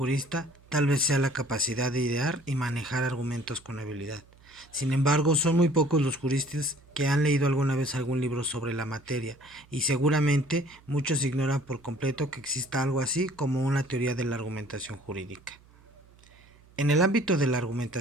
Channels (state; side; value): noise; right; hum, 27 dB below the sound